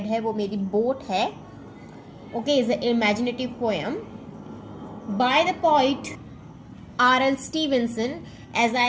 है वो मेरी boat है. Okay, is an imaginative poem by the poet R.L. Stevenson. As I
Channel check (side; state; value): both; identical; correlation 1.00